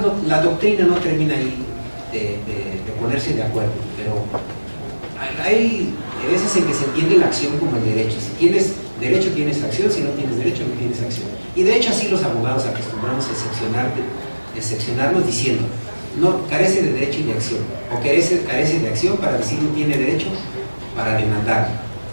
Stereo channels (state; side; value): inverted; both; correlation -1.00